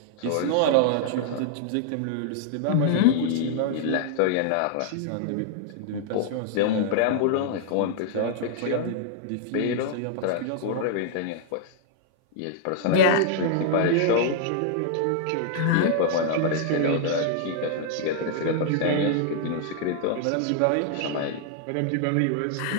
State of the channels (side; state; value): both; different; correlation -0.01